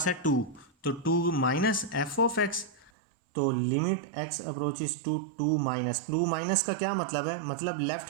है 2, तो 2 माइनस एफ ऑफ एक्स, तो limit x approaches to 2 minus का क्या मतलब है, मतलब लेफ्ट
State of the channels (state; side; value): drops out; left; at 2.9 s